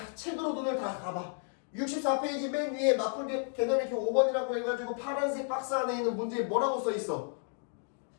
책으로 눈을 다 감아. 64페이지 맨 위에 맞불 개념 이렇게 5번이라고 해가지고 파란색 박스 안에 있는 문제에 뭐라고 써있어?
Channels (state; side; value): silent; right; 56 dB below the other